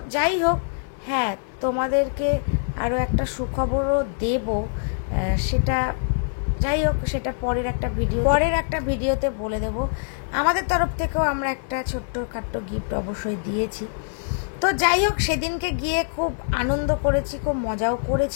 যাই হোক, হ্যাঁ তোমাদেরকে আরও একটা সুখবরও দেব, সেটা যাই হোক সেটা পরের একটা ভিডিওতে বলে দেব। আমাদের তরফ থেকেও আমরা একটা ছোট্টখাট্টো গিফট অবশ্যই দিয়েছি। তো যাই হোক, সেদিনকে গিয়ে খুব আনন্দ করেছি, খুব মজাও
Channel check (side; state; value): right; silent; 63 dB below the other